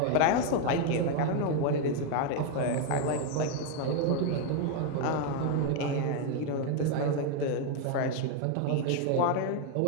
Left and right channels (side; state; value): both; different; correlation 0.01